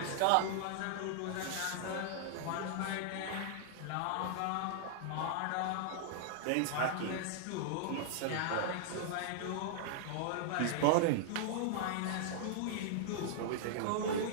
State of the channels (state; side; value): different; both; correlation -0.01